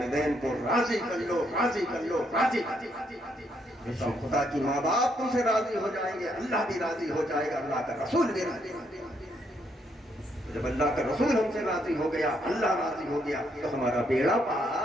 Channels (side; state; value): both; normal; correlation 0.74